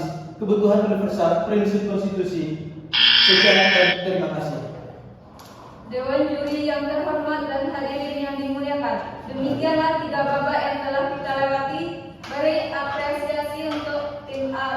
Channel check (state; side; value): identical; both; correlation 1.00